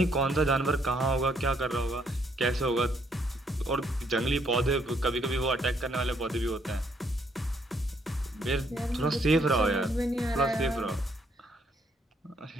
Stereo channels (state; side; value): normal; both; correlation 0.70